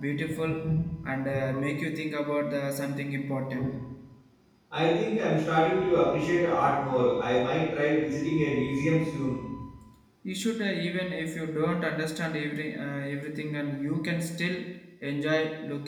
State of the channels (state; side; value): identical; both; correlation 1.00